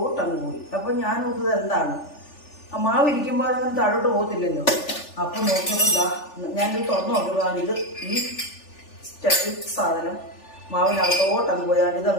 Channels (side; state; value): right; late; 3.4 ms